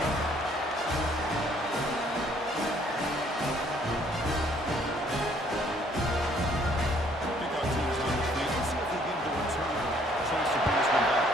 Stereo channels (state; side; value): normal; both; correlation 0.63